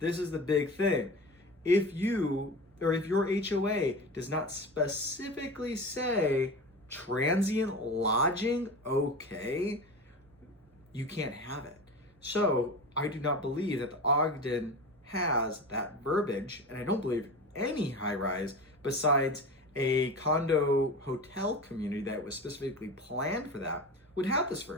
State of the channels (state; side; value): normal; both; correlation 0.30